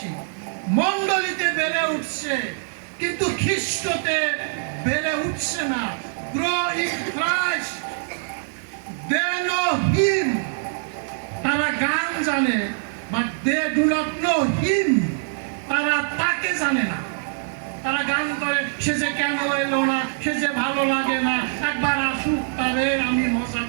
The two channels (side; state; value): left; silent; digital silence